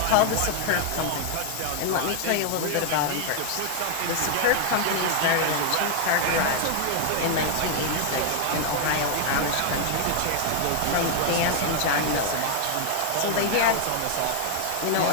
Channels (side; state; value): both; different; correlation 0.00